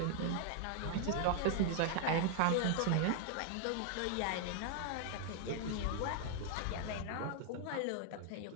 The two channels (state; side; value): different; both; correlation 0.00